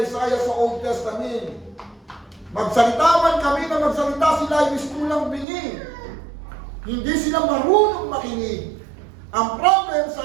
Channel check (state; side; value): drops out; left; at 5.5 s